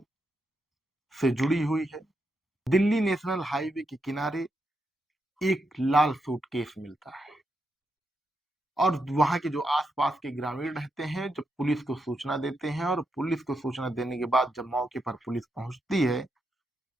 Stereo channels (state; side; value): normal; both; correlation 0.83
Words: से जुड़ी हुई है। दिल्ली नेशनल हाईवे के किनारे एक लाल सूटकेस मिलता है और वहां के जो आसपास के ग्रामीण रहते हैं जब पुलिस को सूचना देते हैं और पुलिस को सूचना देने के बाद जब मौके पर पुलिस पहुंचती है